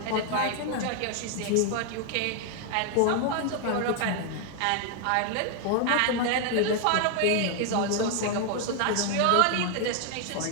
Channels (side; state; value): both; different; correlation 0.00